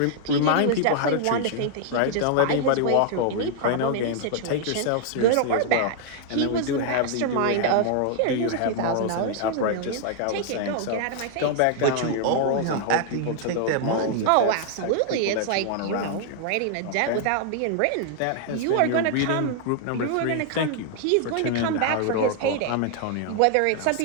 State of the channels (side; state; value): both; different; correlation 0.00